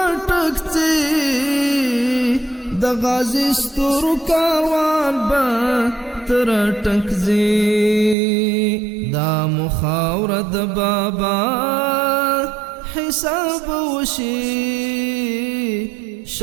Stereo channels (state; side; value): drops out; left; at 8.2 s